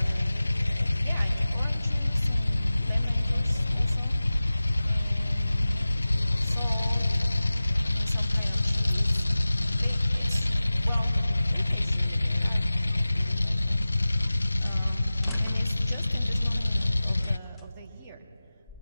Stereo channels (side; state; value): both; inverted; correlation -0.97